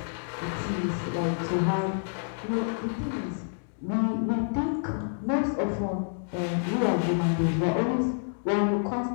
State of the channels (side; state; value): right; silent; digital silence